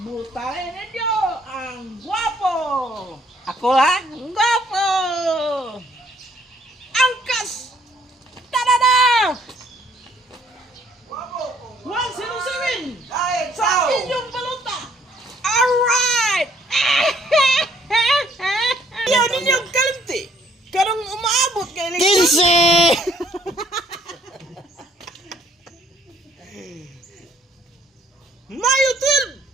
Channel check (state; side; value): normal; both; correlation 0.64